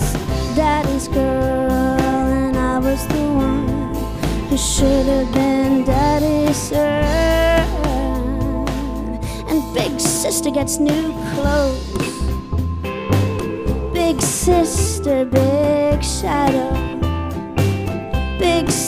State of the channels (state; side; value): identical; both; correlation 1.00